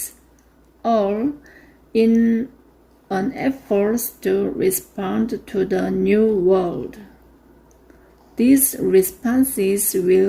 all in an effort to respond to the new world. These responses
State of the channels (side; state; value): both; identical; correlation 1.00